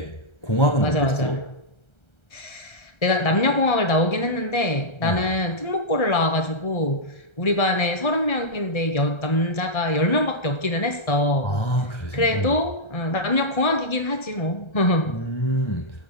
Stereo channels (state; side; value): late; right; 1.3 ms